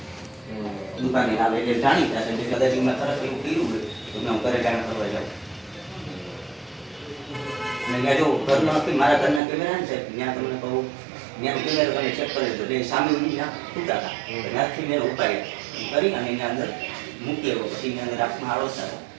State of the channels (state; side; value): drops out; left; at 9.4 s